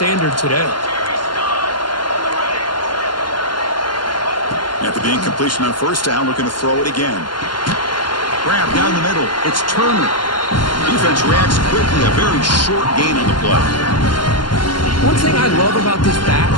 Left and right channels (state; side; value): late; right; 0.71 ms